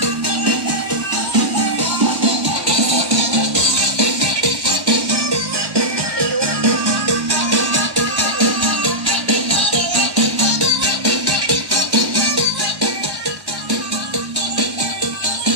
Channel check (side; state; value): left; late; 1.1 ms